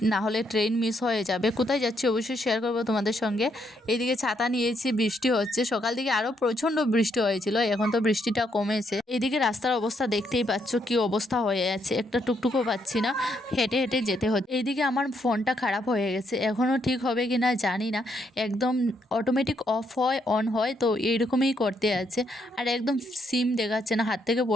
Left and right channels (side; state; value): both; normal; correlation 0.75